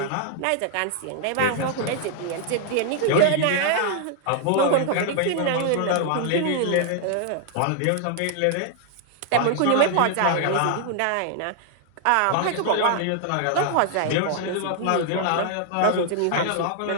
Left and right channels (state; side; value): different; both; correlation 0.00